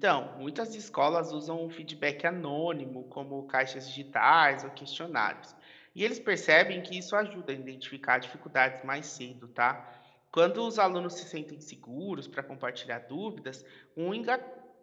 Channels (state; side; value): identical; both; correlation 1.00